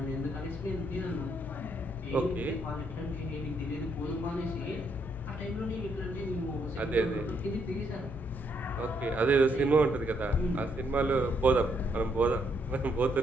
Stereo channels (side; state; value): both; normal; correlation 0.73